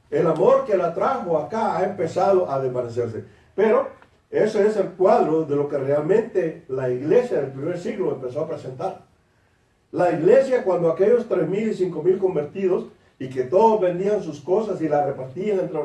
El amor que la trajo acá ha empezado a desvanecerse. Pero ese es el cuadro de lo que realmente la iglesia del primer siglo empezó a presentar. La iglesia, cuando aquellos 3,000 y 5,000 convertidos, y que todos vendían sus cosas y las repartían entre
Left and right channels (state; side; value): identical; both; correlation 1.00